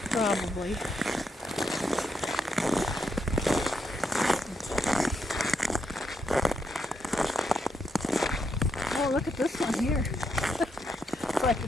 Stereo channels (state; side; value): normal; both; correlation 0.80